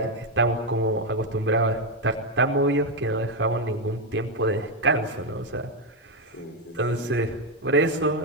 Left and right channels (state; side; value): normal; both; correlation 0.05